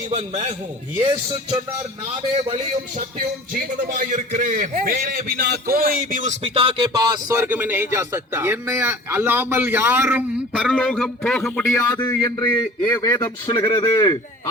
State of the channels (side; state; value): both; normal; correlation 0.43